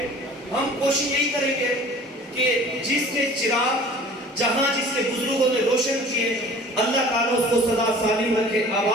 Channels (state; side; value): normal; both; correlation 0.46